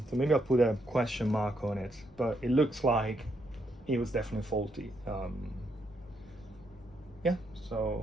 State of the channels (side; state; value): both; normal; correlation 0.77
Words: maybe I'll put a question mark on it, but it looks like it was definitely faulty.